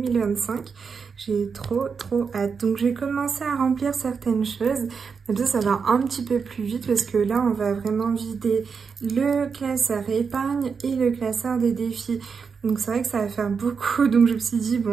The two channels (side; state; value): left; quieter; 5.7 dB